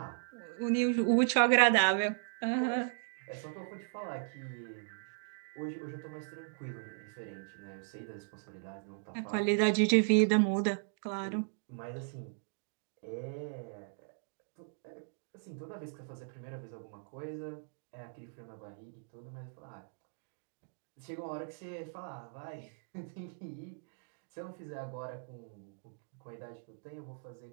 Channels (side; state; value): left; silent; digital silence